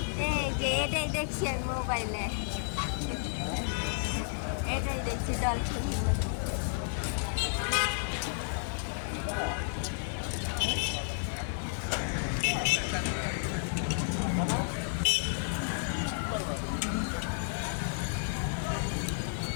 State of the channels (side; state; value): right; silent; 56 dB below the other